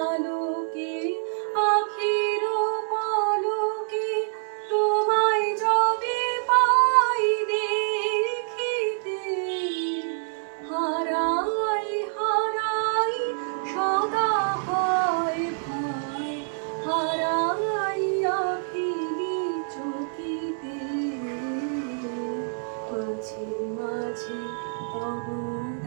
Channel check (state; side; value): silent; left; digital silence